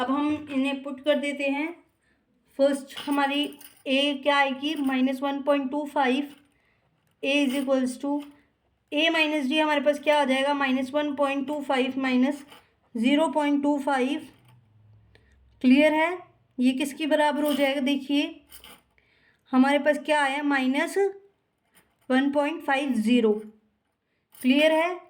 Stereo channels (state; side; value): identical; both; correlation 1.00